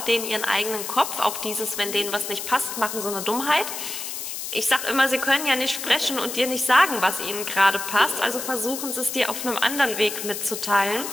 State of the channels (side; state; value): left; noise; hiss, 6 dB below the sound